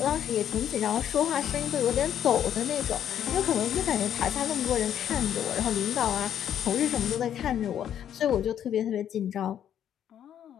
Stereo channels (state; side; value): quieter; right; 9.9 dB